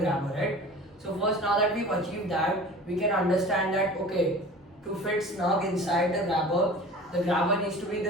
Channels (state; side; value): normal; both; correlation 0.40